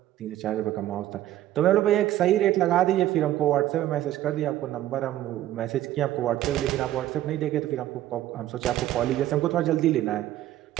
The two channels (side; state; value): left; quieter; 13.5 dB